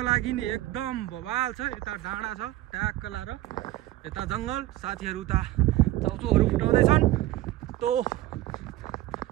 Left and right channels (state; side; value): quieter; left; 15.7 dB